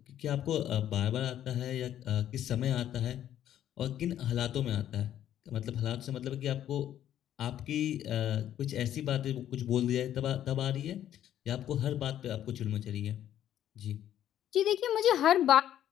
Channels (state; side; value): quieter; right; 11.2 dB